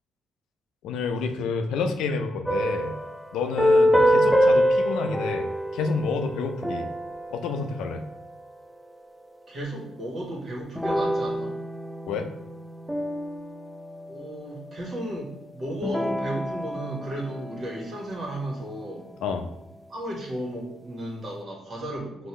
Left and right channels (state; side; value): normal; both; correlation 0.84